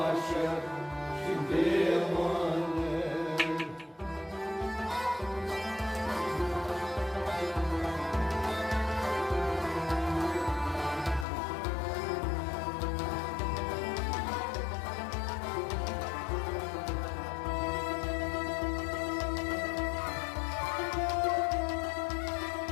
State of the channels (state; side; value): drops out; right; at 11.2 s